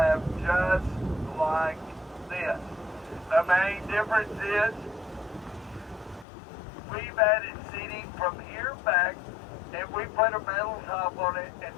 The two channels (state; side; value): drops out; right; at 6.2 s